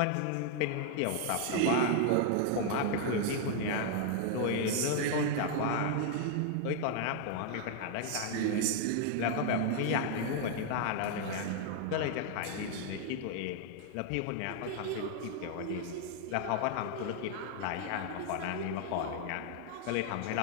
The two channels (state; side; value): different; both; correlation 0.00